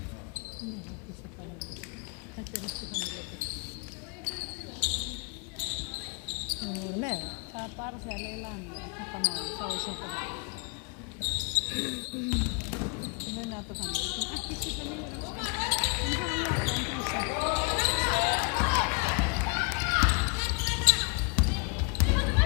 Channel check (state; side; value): quieter; right; 33.8 dB